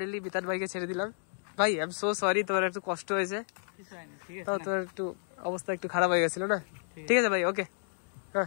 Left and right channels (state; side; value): silent; right; digital silence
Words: বিতান ভাইকে ছেড়ে দিলাম। ভাই আই এম সো সরি, তোমার একটু কষ্ট হয়েছে, তো তোর একটু অবস্থা একটু খারাপ হয়ে গেছিল না। ঠিক আছে ভাই, ওকে,